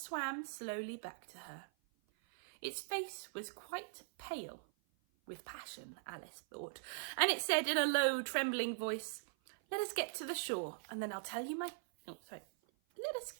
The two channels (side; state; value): left; silent; 50 dB below the other